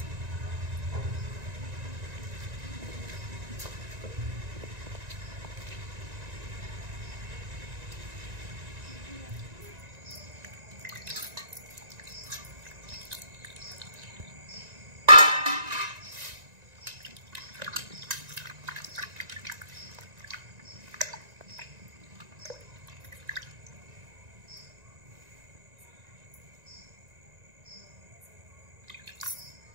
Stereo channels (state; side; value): late; left; 1.9 ms